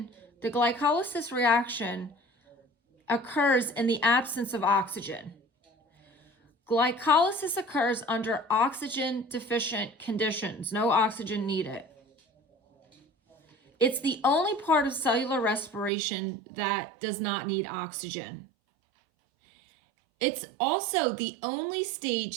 reaction occurs in the absence of oxygen. Glycolysis occurs under oxygen deficient conditions, no oxygen needed. It's the only part of cellular respiration that does not need oxygen. It's also the only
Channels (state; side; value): drops out; left; at 15.9 s